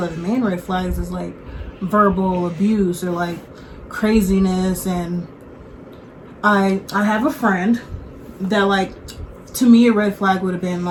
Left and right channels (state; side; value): identical; both; correlation 1.00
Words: like the main red flags is like verbal abuse or like craziness. And I have a friend that, like, to me a red flag would have been